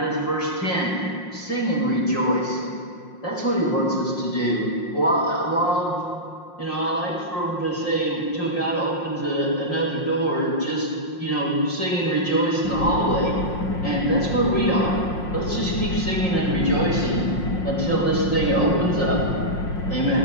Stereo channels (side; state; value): right; late; 5.6 ms